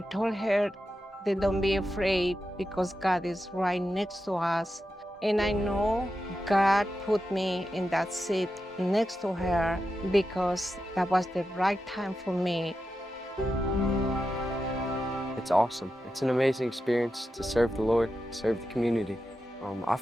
told her that don't be afraid because God is right next to us. And I know God put me in that seat next to her because that was the right time for me. It's awesome. It's an amazing experience to serve the Lord, serve the community. I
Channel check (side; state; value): both; normal; correlation 0.89